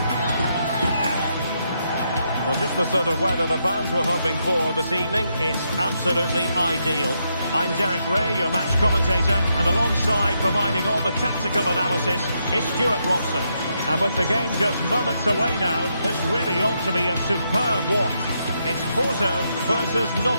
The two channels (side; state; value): both; inverted; correlation -0.80